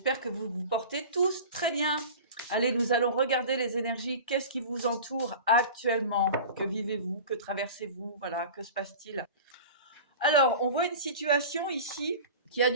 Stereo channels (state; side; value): inverted; both; correlation -0.36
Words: que vous vous portez tous très bien. Allez, nous allons regarder les énergies. Qu'est-ce qui vous entoure actuellement? Que vivez-vous? Que traversez-vous? Voilà, que se passe-t-il? Alors, on voit une situation ici qui a